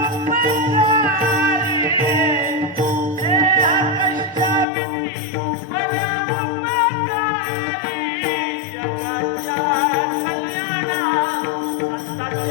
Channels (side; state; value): right; drops out; at 4.7 s